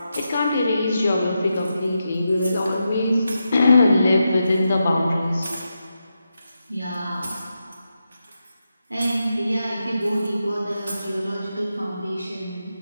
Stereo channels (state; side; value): inverted; both; correlation -0.87